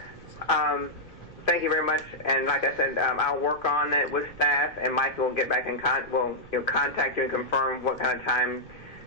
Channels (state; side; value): noise; right; rumble, 22 dB below the sound